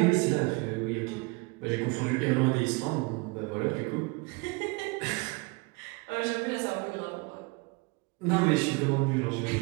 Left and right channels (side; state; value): left; quieter; 27.5 dB